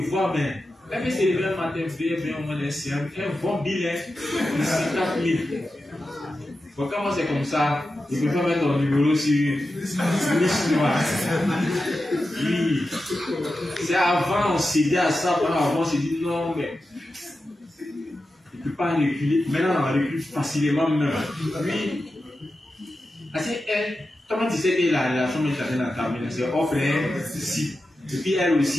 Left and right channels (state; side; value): normal; both; correlation 0.91